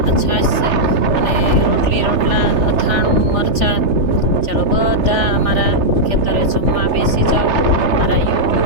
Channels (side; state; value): left; late; 3.3 ms